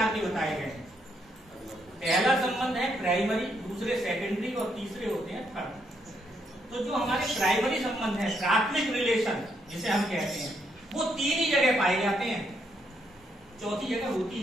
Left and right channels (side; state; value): both; normal; correlation 0.75